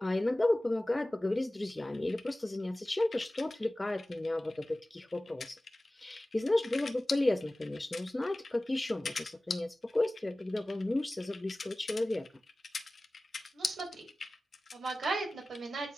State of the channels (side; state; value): both; normal; correlation 0.97